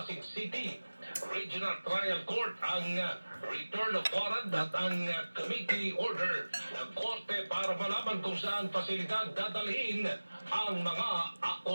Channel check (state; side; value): inverted; both; correlation -1.00